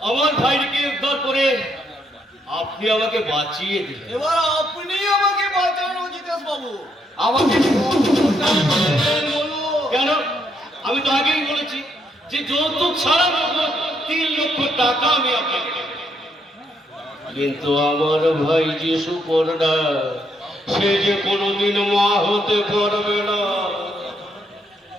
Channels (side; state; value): both; normal; correlation 0.75